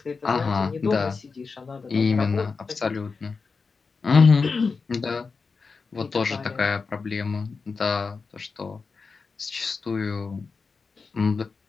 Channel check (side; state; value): right; quieter; 4.7 dB